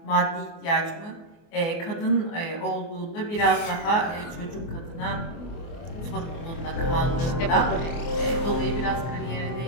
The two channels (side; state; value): right; late; 24 ms